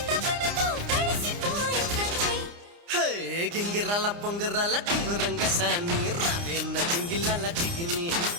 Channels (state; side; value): late; left; 29 ms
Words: తపనతో తడిసిపోయే తండ్రి హే గింగిరాల పొంగిరాల టింగురంగ సాని రావేన్న జింగిలాల జిగిని